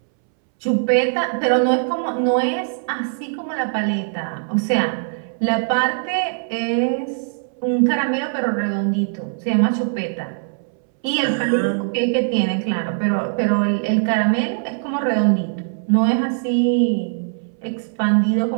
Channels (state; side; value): silent; left; 65 dB below the other